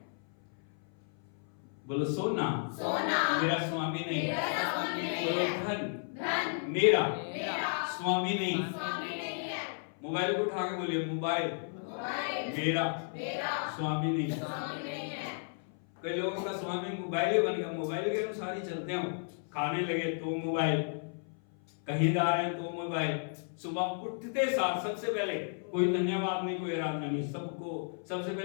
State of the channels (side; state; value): right; silent; 56 dB below the other